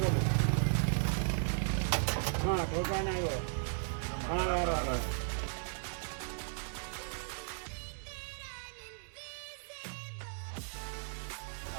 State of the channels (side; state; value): left; silent; digital silence